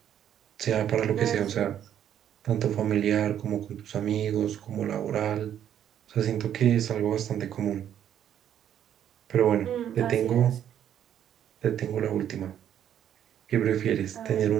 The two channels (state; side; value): quieter; left; 10.1 dB